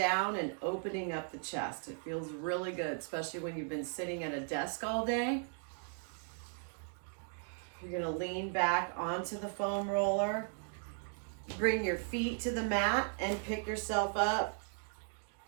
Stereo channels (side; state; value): left; silent; 53 dB below the other